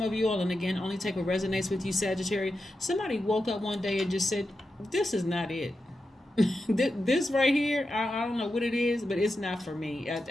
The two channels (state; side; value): normal; both; correlation 0.89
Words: of you all, and again, only take what resonates with you, Sagittarius, somebody woke up one day and just said, this is not it. This right here, I don't know what it is, but it's not for me.